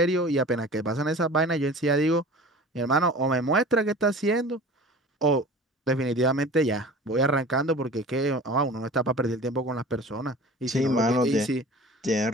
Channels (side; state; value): both; normal; correlation 0.40